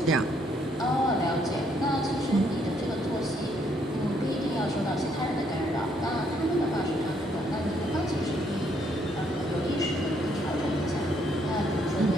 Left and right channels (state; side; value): normal; both; correlation 0.70